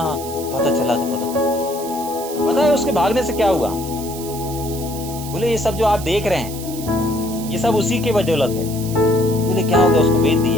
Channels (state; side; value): noise; right; hiss, 12 dB below the sound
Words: पता चला। पता है उसके भागने से क्या हुआ? बोले ये सब जो आप देख रहे हैं ये सब उसी के बदौलत है। बोले क्या हो गया, उसको बेच